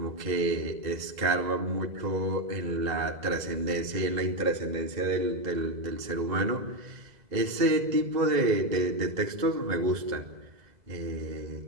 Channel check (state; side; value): late; left; 2.0 ms